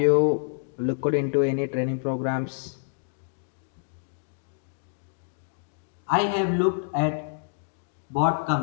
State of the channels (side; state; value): right; silent; digital silence